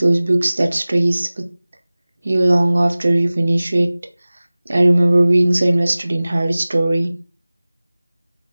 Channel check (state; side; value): inverted; both; correlation -0.99